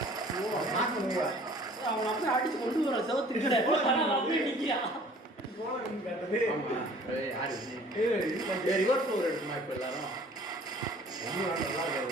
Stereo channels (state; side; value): normal; both; correlation 0.51